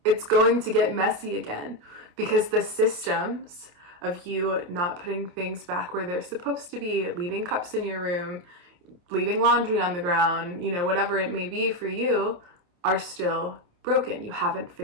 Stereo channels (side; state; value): left; late; 28 ms